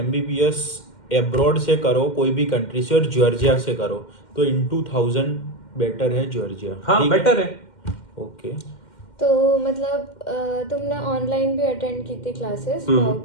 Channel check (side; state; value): right; late; 2.1 ms